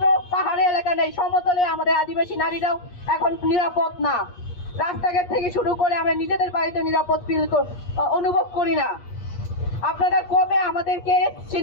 পাহাড়ি এলাকা নেই, সমতলে আমাদের আদিবাসী নারীরাও এখন নিরাপদ না। রাস্তাঘাট থেকে শুরু করে আমরা নিজেদের বাড়িতে নিরাপদ অনুভব করি না। আপনারা কবে আমাদেরকে সে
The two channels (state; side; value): late; right; 8.4 ms